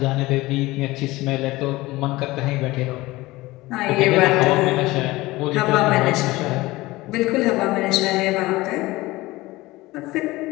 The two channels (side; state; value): right; quieter; 19.6 dB